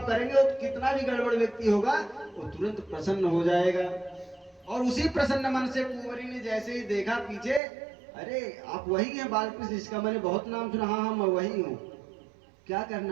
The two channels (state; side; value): drops out; left; at 7.6 s